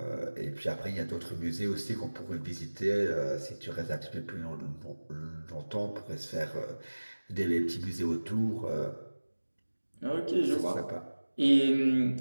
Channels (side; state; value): both; inverted; correlation -1.00